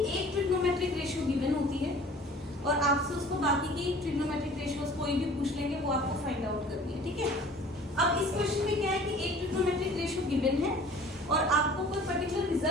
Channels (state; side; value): normal; both; correlation 0.48